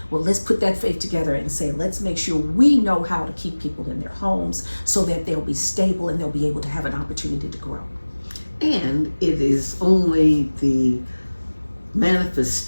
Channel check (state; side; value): inverted; both; correlation -1.00